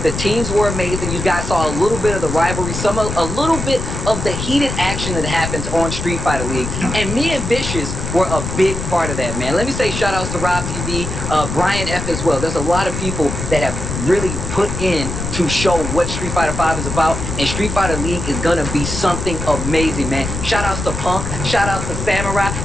The teams were amazing. You guys saw a little bit of the rivalry, a little bit of the heated action that happens on Street Fighter League. And me and Vicious were a big part of that, man. Let me say shout outs to Rob TV, Brian F as well. There's a lot of people that have really put in to show what Street Fighter V is about. And Street Fighter League is going to be something amazing, man. Shout outs to Punk. Shout outs to Samurai.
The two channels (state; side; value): noise; left; rumble, 5 dB below the sound